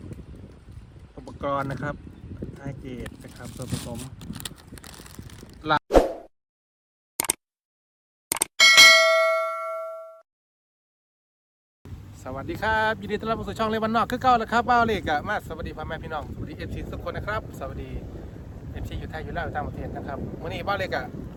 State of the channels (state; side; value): identical; both; correlation 1.00